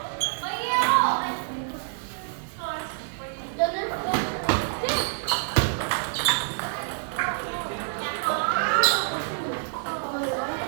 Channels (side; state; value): left; silent; 56 dB below the other